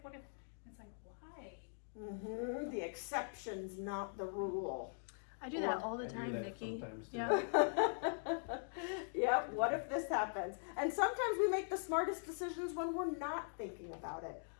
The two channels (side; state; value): right; silent; digital silence